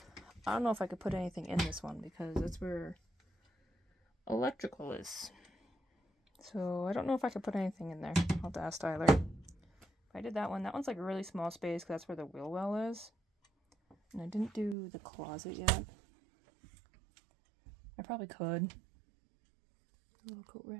I don't know if I could put anything in this one because that's where electrical is. So I don't know if I could put anything in there. I'll have to ask Tyler. If I did that one, that one's like a really small space because that's where the wheel well is. And I didn't do the closet yet. I probably could. A little coat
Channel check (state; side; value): drops out; left; at 14.8 s